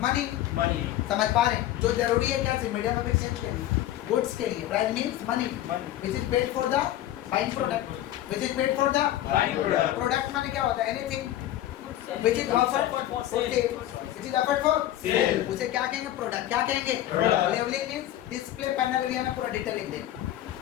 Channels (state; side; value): quieter; right; 13.4 dB